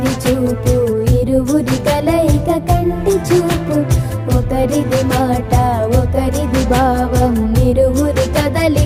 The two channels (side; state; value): both; identical; correlation 1.00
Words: చూపు ఇరువురి కలయిక కంటి చూపు, ఒకరిది మాట ఒకరిది భావం ఇరువురి